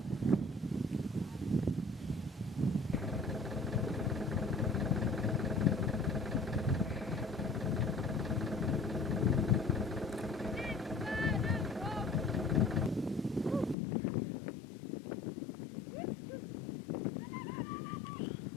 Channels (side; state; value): right; drops out; at 13.8 s